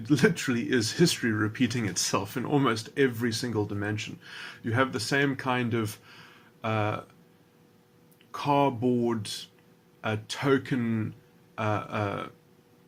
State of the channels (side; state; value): both; identical; correlation 1.00